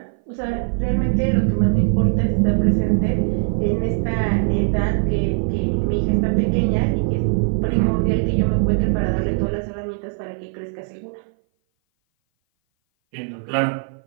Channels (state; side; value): silent; left; 58 dB below the other